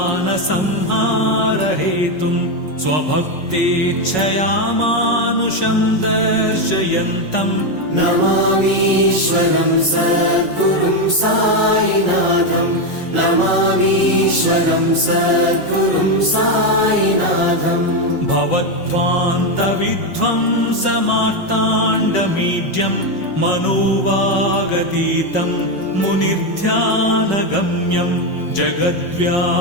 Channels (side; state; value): right; late; 5.4 ms